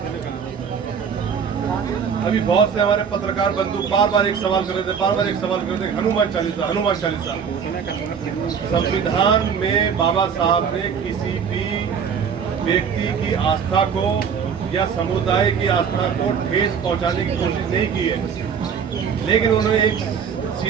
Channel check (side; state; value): left; quieter; 6.9 dB